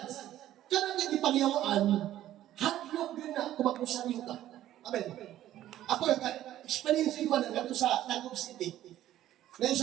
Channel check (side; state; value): left; quieter; 13.0 dB